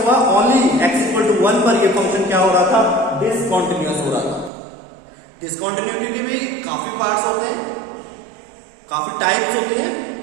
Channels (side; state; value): left; drops out; at 4.5 s